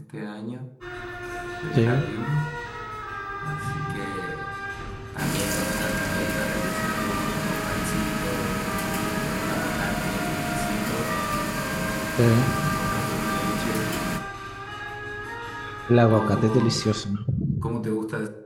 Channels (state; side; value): identical; both; correlation 1.00